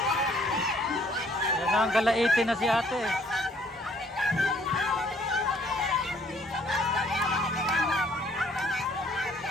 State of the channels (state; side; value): normal; both; correlation 0.62